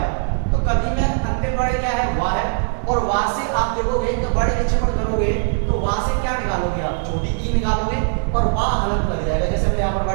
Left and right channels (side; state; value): left; silent; 66 dB below the other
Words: तो कवि में अंतिम वर्ड क्या है, वाह है, और वाह से आप देखोगे तो वर्ड विक्षेपण करोगे तो वाह से क्या निकालोगे, आप छोटी ई निकालोगे और वाह हलंत लग जाएगा, जैसे मैंने यहाँ पर